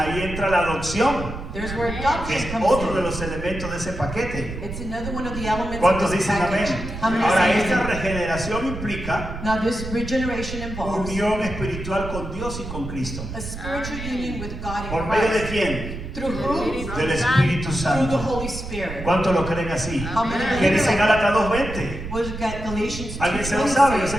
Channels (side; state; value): right; noise; rumble, 8 dB below the sound